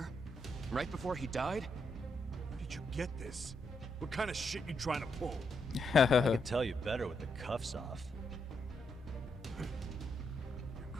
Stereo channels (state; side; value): normal; both; correlation 0.80